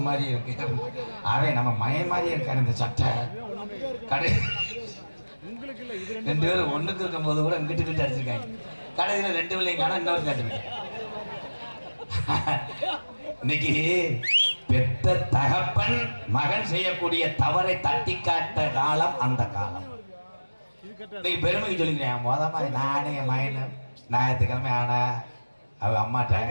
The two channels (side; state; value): both; inverted; correlation -1.00